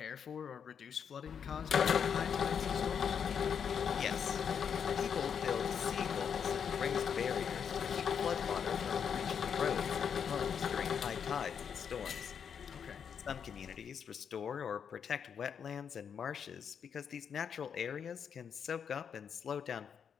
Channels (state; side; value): quieter; right; 7.4 dB